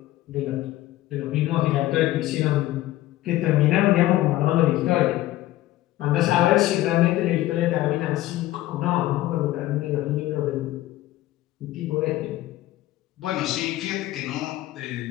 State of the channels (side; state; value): right; quieter; 15.6 dB